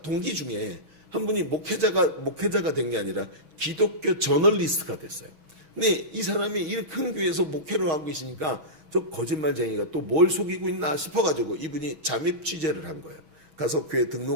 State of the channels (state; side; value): late; left; 6.4 ms